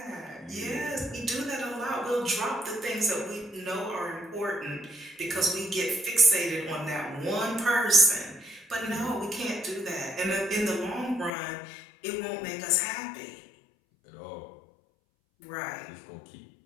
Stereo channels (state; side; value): drops out; right; at 11.3 s